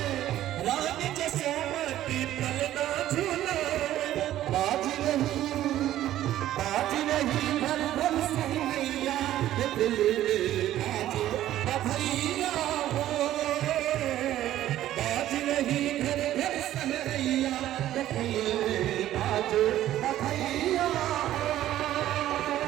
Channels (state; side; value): quieter; left; 13.2 dB